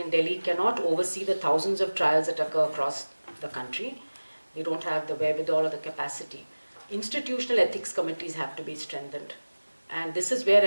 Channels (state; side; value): inverted; both; correlation -1.00